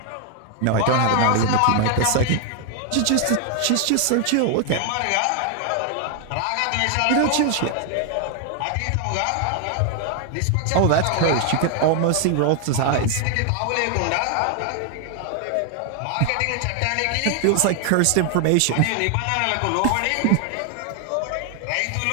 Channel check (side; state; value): both; different; correlation 0.00